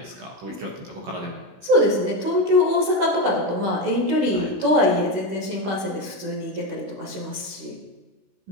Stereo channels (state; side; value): late; left; 16 ms